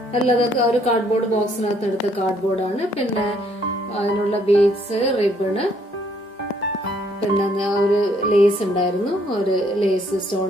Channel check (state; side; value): normal; both; correlation 0.67